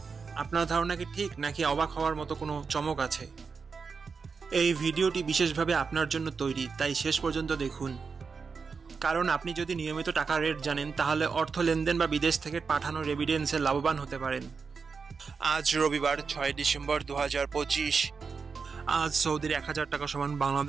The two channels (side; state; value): left; quieter; 5.2 dB